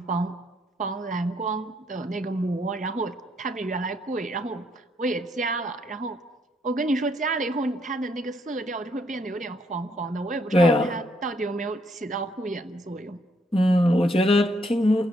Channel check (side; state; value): both; normal; correlation 0.72